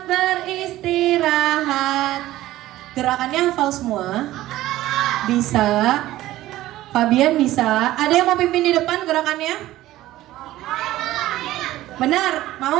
beristirahat. Gerakannya hafal semua? Bisa. Fabian bisa. Ada yang mau pimpin di depan gerakannya? Benar?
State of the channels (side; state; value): left; quieter; 15.5 dB